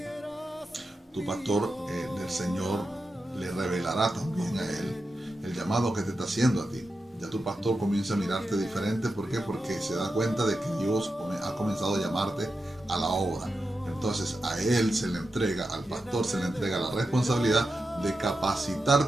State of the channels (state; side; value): normal; both; correlation 0.90